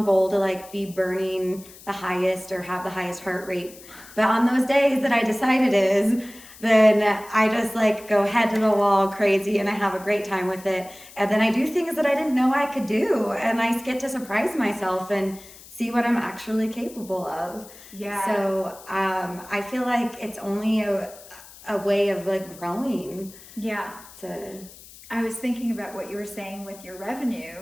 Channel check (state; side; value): noise; left; hiss, 20 dB below the sound